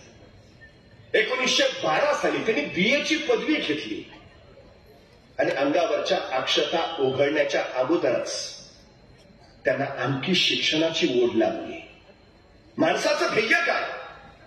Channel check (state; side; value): identical; both; correlation 1.00